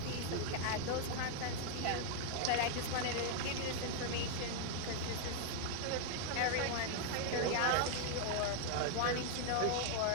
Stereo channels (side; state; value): both; different; correlation 0.00